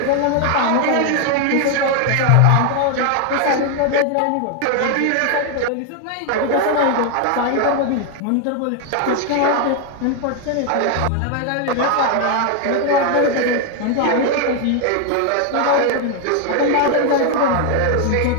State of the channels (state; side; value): different; both; correlation 0.01